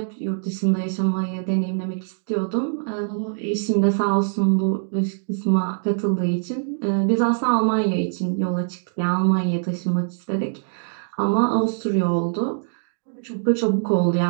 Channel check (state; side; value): silent; left; digital silence